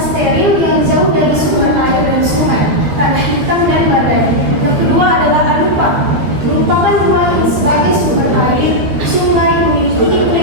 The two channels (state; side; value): late; left; 13 ms